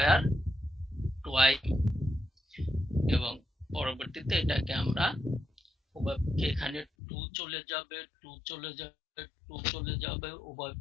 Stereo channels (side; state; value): right; drops out; at 6.9 s